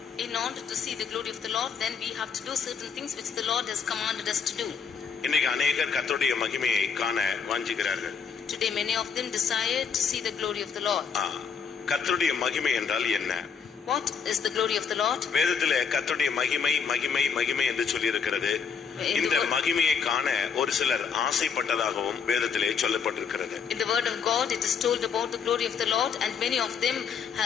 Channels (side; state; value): right; quieter; 6.3 dB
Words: In order to see the glory of the Lord, then we have to do certain things which the Lord has commanded us to do. இன்னைக்கு அநேகர் கர்த்தருடைய மகிமையை காண வாஞ்சிக்கிறார்கள். Today many of them desire to see the glory of the Lord. கர்த்தருடைய மகிமை என்றால் என்ன? What is the glory of the Lord? வேதத்திலே கர்த்தருடைய மகிமை மகிமை மகிமை என்று சொல்லி இருக்கிறது. இந்த மகிமையை காண ஒரு சிலர் ஆசைப்பட்டதாகவும் வேதத்திலே சொல்லப்பட்டிருக்கிறது. In the word of God it is told about the glory of the Lord, and many of them